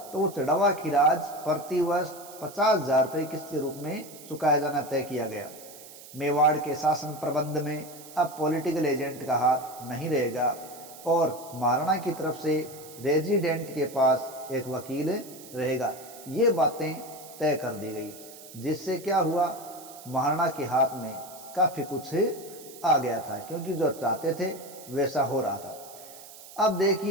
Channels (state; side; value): noise; right; hiss, 17 dB below the sound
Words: तो वो चढ़ा हुआ खिराज प्रति वर्ष 50,000 रुपये किस्त के रूप में चुकाया जाना तय किया गया। मेवाड़ के शासन प्रबंध में अब पॉलिटिकल एजेंट का हाथ नहीं रहेगा और महाराणा की तरफ से रेजिडेंट के पास एक वकील रहेगा। ये बातें तय कर दी गई, जिससे क्या हुआ, महाराणा के हाथ में काफ़ी कुछ आ गया था क्योंकि जो चाहते थे वैसा हो रहा था। अब